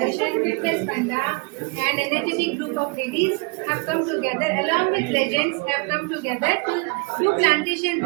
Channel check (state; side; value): quieter; left; 29.7 dB